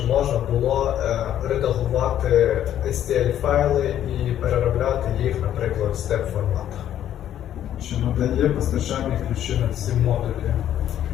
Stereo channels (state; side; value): quieter; right; 11.1 dB